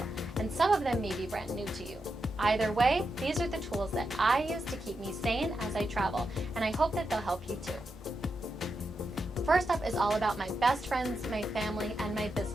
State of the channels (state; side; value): normal; both; correlation 0.86